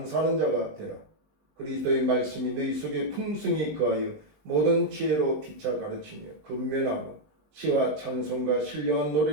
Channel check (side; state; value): left; late; 19 ms